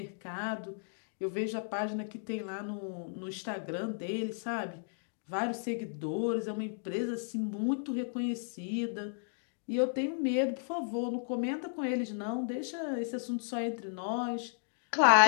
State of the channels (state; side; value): silent; right; digital silence